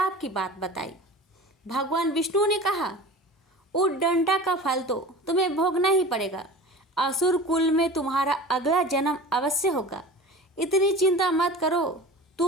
की बात बताई। भगवान विष्णु ने कहा, उद्दंडा का फल तो तुम्हें भोगना ही पड़ेगा। असुर कुल में तुम्हारा अगला जन्म अवश्य होगा। इतनी चिंता मत करो,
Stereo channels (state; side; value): normal; both; correlation 0.37